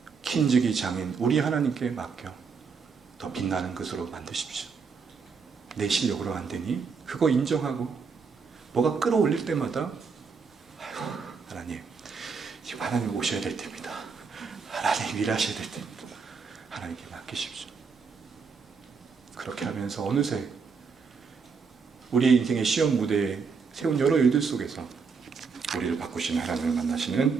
kin직이 장인 우리 하나님께 맡겨 더 빛나는 것으로 만드십시오. 내 실력으로 안 되니 그거 인정하고 뭐가 끌어올릴 때마다 아이고 하나님, 지금 하나님 오셔야 될 때입니다. 하나님 일하셔야 될 때입니다. 하나님께 맡기십시오. 그렇게 하면서 어느새 우리의 인생의 시험 무대에 세운 여러 일들 속에서 우리를 바꾸시는 하나님을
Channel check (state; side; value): quieter; left; 5.3 dB